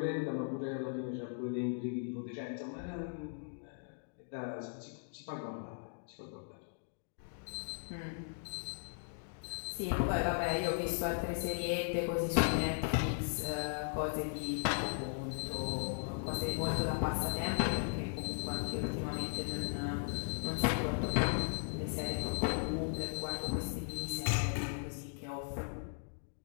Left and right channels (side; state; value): right; silent; digital silence